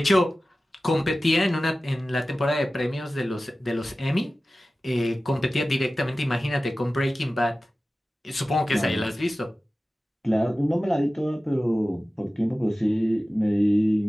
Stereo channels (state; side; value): normal; both; correlation 0.96